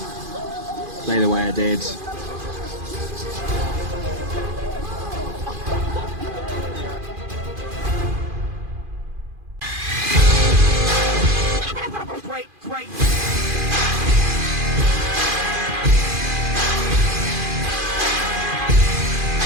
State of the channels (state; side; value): late; left; 2.4 ms